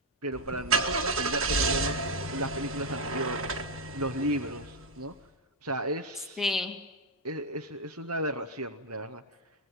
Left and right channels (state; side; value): normal; both; correlation 0.02